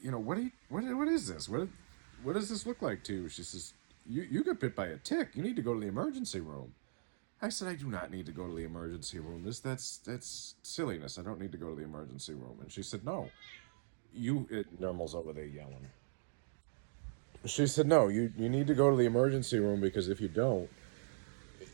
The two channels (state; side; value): silent; left; digital silence